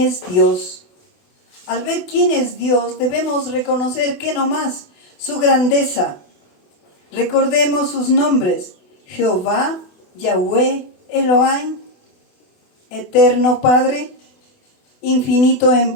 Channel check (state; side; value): late; right; 28 ms